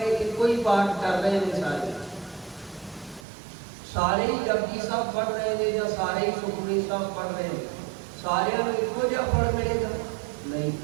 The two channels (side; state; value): left; drops out; at 3.2 s